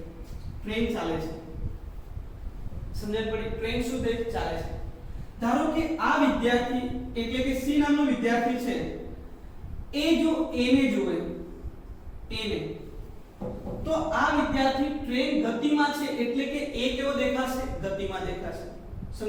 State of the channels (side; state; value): both; identical; correlation 1.00